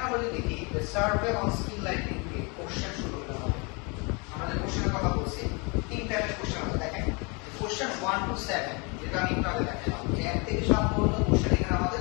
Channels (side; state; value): right; quieter; 30.8 dB